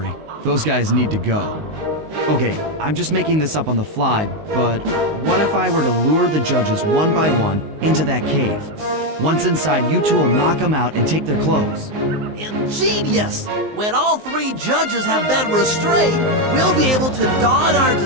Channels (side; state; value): left; late; 19 ms